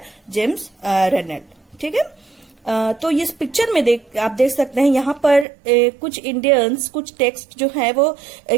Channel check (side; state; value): left; drops out; at 5.5 s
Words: जेम्स रेनल। ठीक है। तो इस पिक्चर में आप देख सकते हैं यहाँ पर कुछ इंडियंस कुछ टेक्स्ट जो है वो